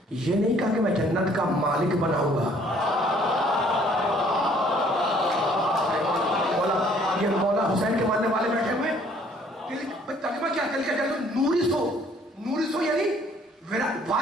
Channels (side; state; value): both; normal; correlation 0.60